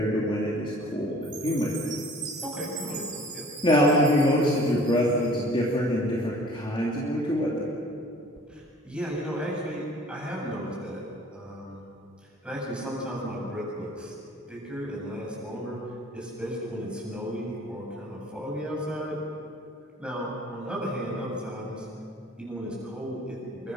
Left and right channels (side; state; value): both; normal; correlation 0.50